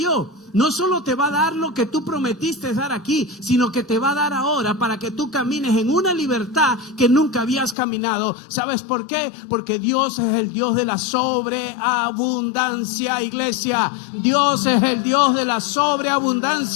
No solo te va a dar lo que tú prometiste dar aquí, sino que te va a dar ahora para que tú camines en una libertad que nunca habías caminado. ¿Sabes por qué? Porque Dios es el Dios de la sobreabundancia, iglesia. Dios es el Dios de la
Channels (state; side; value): drops out; right; at 7.8 s